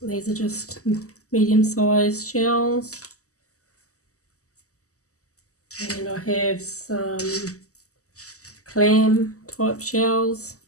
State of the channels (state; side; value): late; right; 0.66 ms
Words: These are just medium-sized shells. And I have some clam type shells.